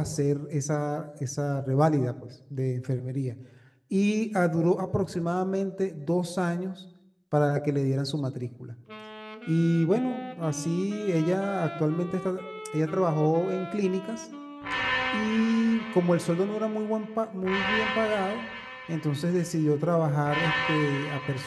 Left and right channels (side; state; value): both; identical; correlation 1.00